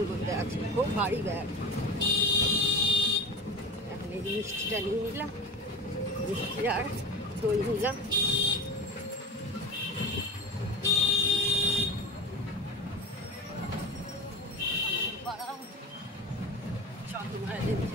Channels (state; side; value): normal; both; correlation 0.30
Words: মধ্যে আছে, খুব ভারী ব্যাগ। এখন এই মিষ্টিটা নিয়ে নিলাম, মিষ্টি আর দই নিলাম।